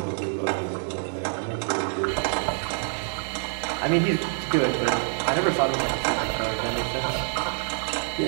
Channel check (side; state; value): left; silent; 61 dB below the other